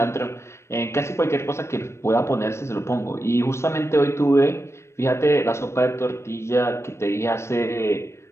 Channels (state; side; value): late; right; 0.13 ms